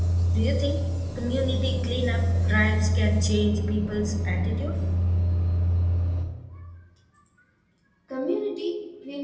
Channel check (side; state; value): both; identical; correlation 1.00